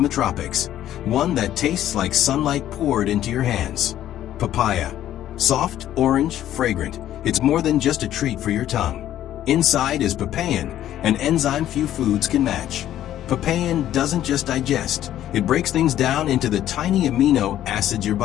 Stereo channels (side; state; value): right; quieter; 12.2 dB